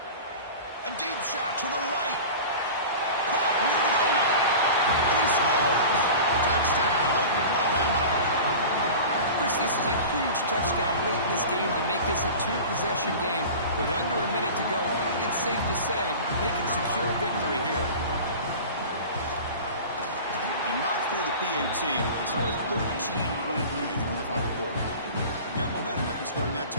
A deep shot to the right. Caught near the goal line. And he scores. Touchdown, Oklahoma. Chris, this is a huge touchdown late in this game to make this a 2-possession game. With under a minute to go, I think it's safe to say they can secure a victory here. He knocked through the PAT. It's now a 13-point lead here in the final quarter. Got momentum after scoring that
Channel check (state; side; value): inverted; both; correlation -0.35